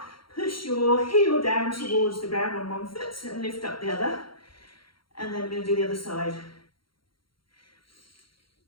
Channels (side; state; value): right; late; 0.73 ms